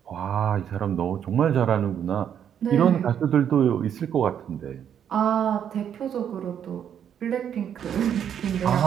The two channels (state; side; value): quieter; left; 8.9 dB